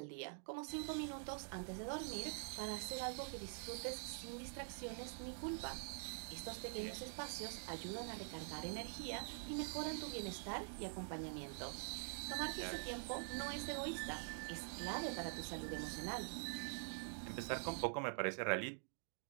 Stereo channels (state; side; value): silent; left; digital silence